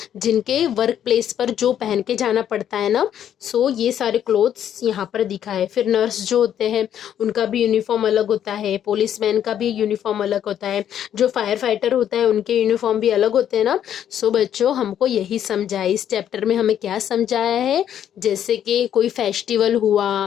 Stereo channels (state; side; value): quieter; right; 10.0 dB